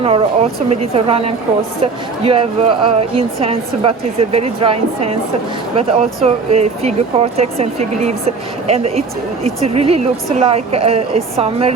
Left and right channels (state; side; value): quieter; left; 4.5 dB